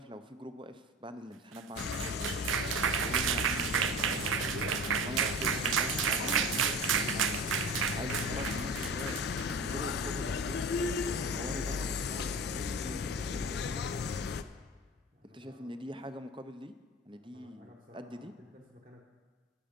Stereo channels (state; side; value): normal; both; correlation 0.33